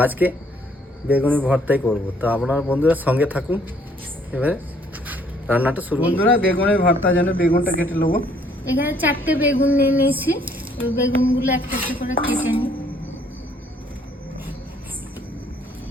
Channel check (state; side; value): normal; both; correlation 0.63